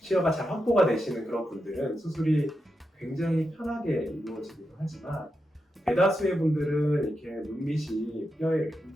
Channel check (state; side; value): normal; both; correlation 0.87